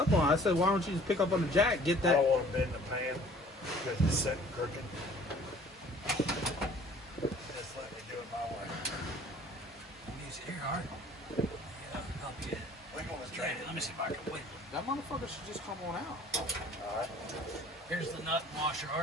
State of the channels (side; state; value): both; normal; correlation 0.52